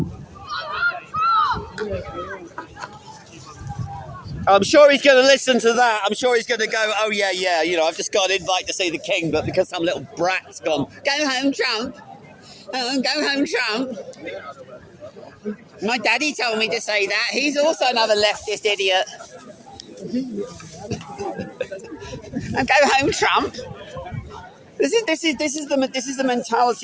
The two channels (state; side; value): identical; both; correlation 1.00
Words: I'm sure he's going to listen to that. I'm sure he's going to go, oh, yeah, you know, I've just got an invite to see the king, but because some little brat's gone, go home, Trump. Oh, go home, Trump. My daddy told me to say that. He's also another leftist idiot. And go home, Trump. This is the